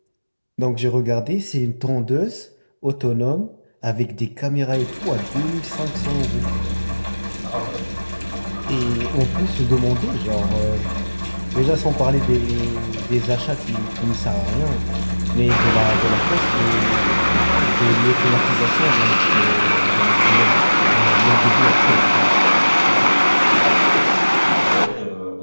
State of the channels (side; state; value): both; inverted; correlation -1.00